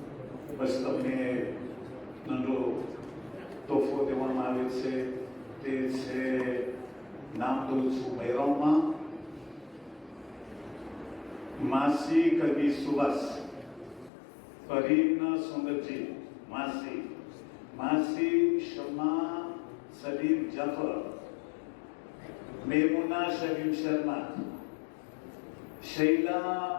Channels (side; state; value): right; drops out; at 14.1 s